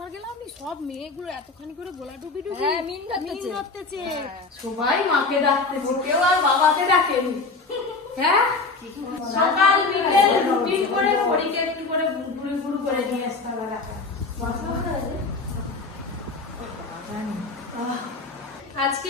গেলাম, সব মেয়েগুলো এতখানি করে গোলা ডুবি হ্যাঁ, মিন ধরতেছে। সবাই মাকে ডাকতেছে, কেউ আর বাবাকে ডাকেনি। হ্যাঁ, সকাল বিকেল রুটিন করে পরীকে একটু করে ঘুরে ঘুরে করে নিয়ে আসতে হবে ডাকা।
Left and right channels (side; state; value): right; quieter; 3.8 dB